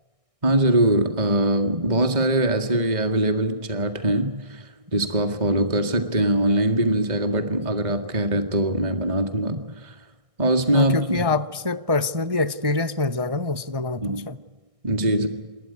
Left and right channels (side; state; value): left; late; 1.6 ms